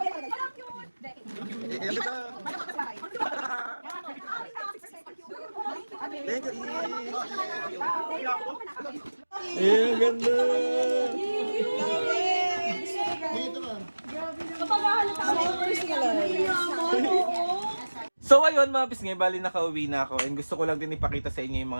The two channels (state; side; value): inverted; both; correlation -1.00